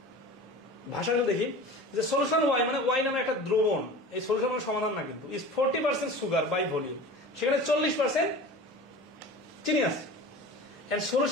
ভাষাগুলো দেখি, যে solution Y মানে Y নামে একটা দ্রবণ, এই solution মানে সমাধান না কিন্তু, is 40% সুগার বাই ভলিউম, সেখানে 40% চিনি আছে। and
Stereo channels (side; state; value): both; normal; correlation 0.37